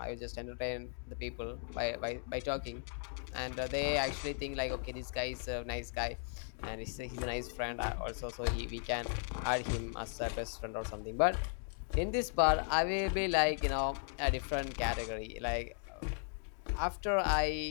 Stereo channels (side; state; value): right; silent; 53 dB below the other